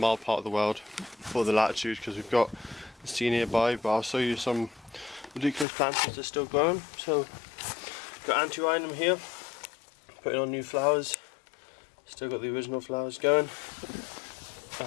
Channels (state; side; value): drops out; right; at 5.7 s